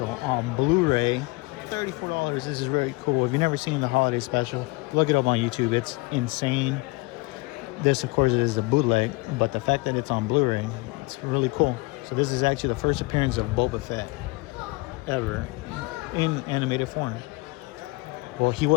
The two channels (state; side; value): quieter; right; 24.8 dB